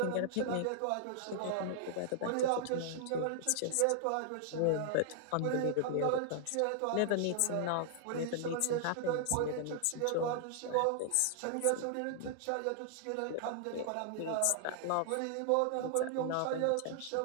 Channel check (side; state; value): both; different; correlation -0.01